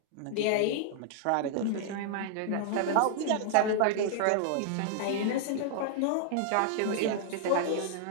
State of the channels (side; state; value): both; different; correlation -0.01